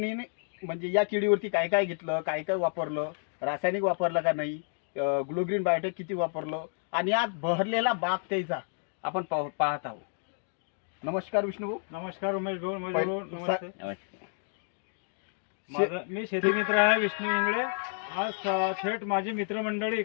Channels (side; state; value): right; silent; 58 dB below the other